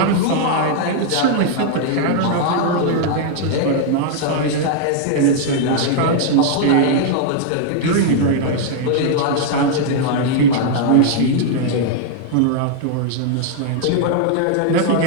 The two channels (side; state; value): both; different; correlation 0.00